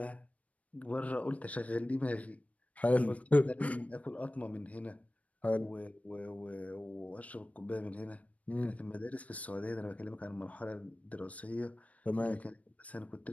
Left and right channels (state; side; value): late; right; 0.068 ms